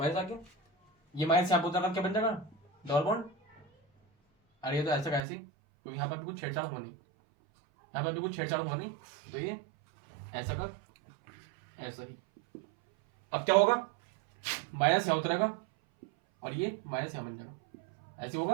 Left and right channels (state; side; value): drops out; left; at 5.2 s